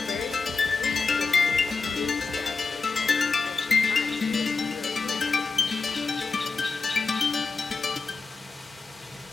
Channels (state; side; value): quieter; right; 4.4 dB